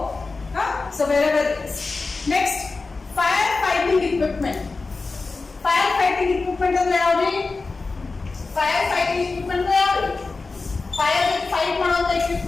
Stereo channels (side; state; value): right; quieter; 3.9 dB